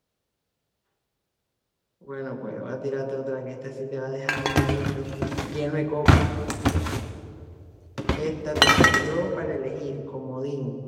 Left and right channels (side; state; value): both; identical; correlation 1.00